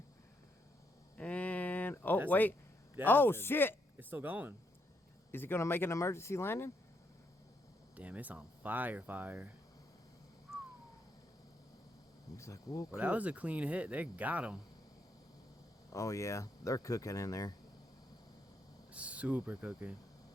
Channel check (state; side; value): normal; both; correlation 0.77